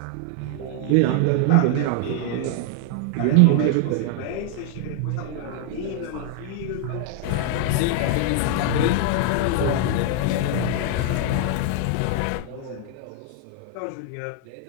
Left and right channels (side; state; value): both; different; correlation 0.00